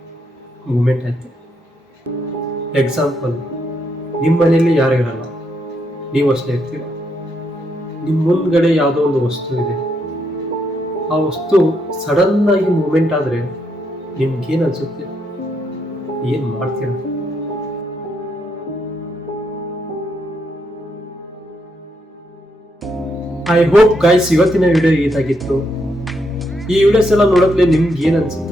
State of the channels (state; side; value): normal; both; correlation 0.78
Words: ಮೂಮೆಂಟ್ ಆಯಿತು. ಎಕ್ಸಾಂಪಲ್, ನಿಮ್ಮ ಮನೆಯಲ್ಲಿ ಯಾರು ಇರಲ್ಲ, ನೀವು ಅಷ್ಟೇ ಇರ್ತೀರ. ನಿಮ್ಮ ಮುಂದ್ಗಡೆ ಯಾವುದೋ ಒಂದು ವಸ್ತು ಇದೆ, ಆ ವಸ್ತು ಸಡನ್ನಾಗಿ ಮೂಮೆಂಟ್ ಆದರೆ ನಿಮ್ಗೇನು ಅನಿಸುತ್ತೆ? ಏನು ಮಾಡ್ತೀರ? ಐ ಹೋಪ್ ಗೈಸ್ ಇವತ್ತಿನ ವಿಡಿಯೋ ಇದಾಗಿತ್ತು. ಈ ವಿಡಿಯೋಸ್ ಎಲ್ಲ ನೋಡೋದ್ಲೆ ನಿಮ್ಗೆ ಏನು